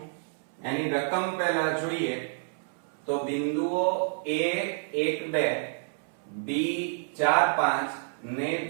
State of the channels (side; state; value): left; silent; 59 dB below the other